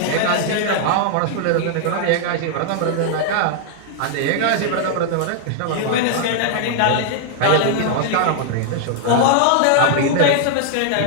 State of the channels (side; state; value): both; different; correlation -0.01